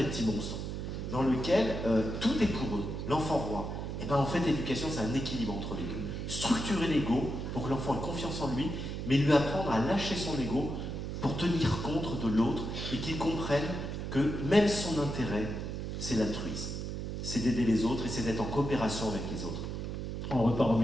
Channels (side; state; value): right; noise; hum, 4 dB below the sound